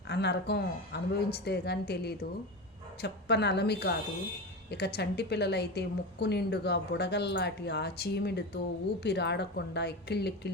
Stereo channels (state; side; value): normal; both; correlation 0.23